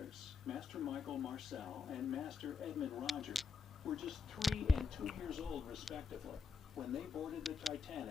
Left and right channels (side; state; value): right; quieter; 5.1 dB